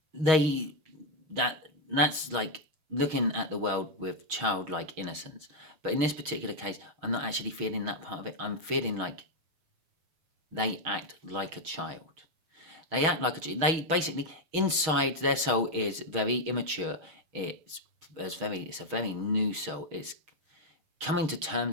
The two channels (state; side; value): late; left; 6.3 ms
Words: That's like looking at the world with childlike innocence. But in this particular case, I'm not actually feeling that part of it. I'm feeling like they act like a child. They act like a child. They basically, inside their soul is very immature. It's a very new soul. It's coming to